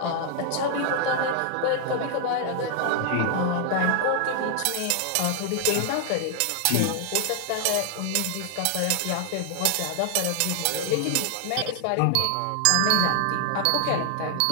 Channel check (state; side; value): different; both; correlation 0.00